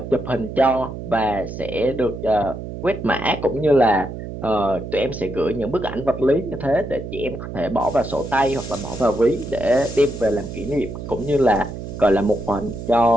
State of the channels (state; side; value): noise; right; hum, 9 dB below the sound